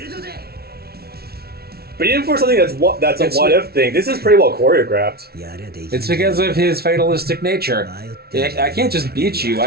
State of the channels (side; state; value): left; late; 0.45 ms